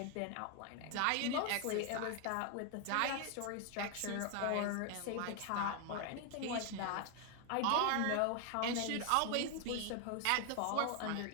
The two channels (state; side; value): different; both; correlation 0.00